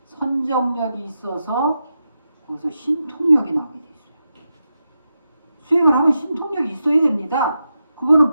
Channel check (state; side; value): inverted; both; correlation -0.88